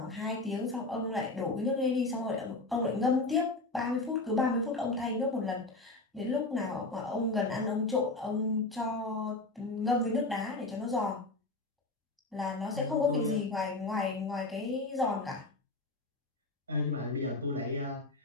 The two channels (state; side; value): quieter; right; 3.1 dB